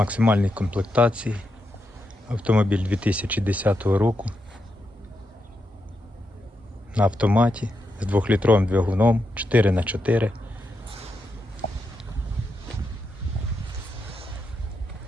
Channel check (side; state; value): both; normal; correlation 0.84